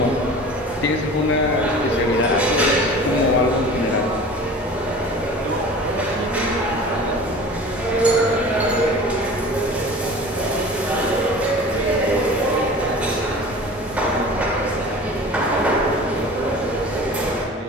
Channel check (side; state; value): both; normal; correlation 0.40